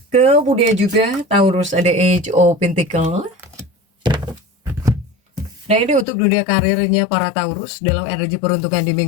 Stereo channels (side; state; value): right; drops out; at 6.1 s